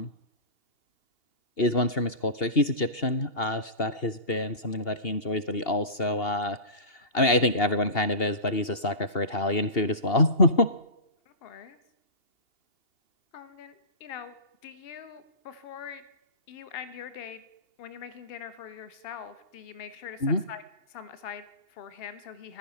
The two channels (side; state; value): right; late; 2.8 ms